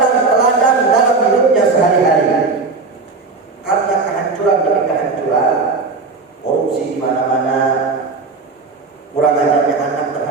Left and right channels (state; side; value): quieter; left; 4.1 dB